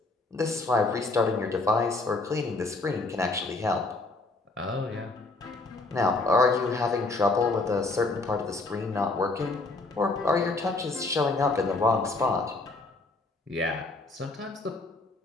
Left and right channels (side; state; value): right; quieter; 3.3 dB